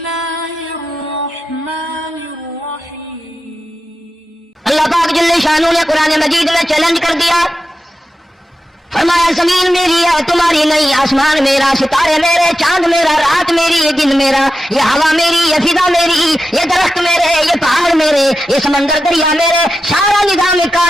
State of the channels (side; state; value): both; normal; correlation 0.90